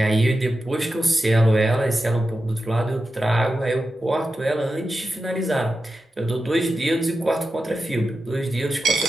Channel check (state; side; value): normal; both; correlation 0.91